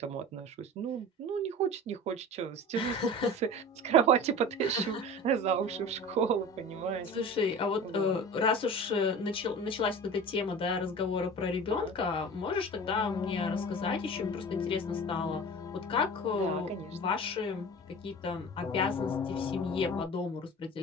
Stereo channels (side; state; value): both; normal; correlation 0.36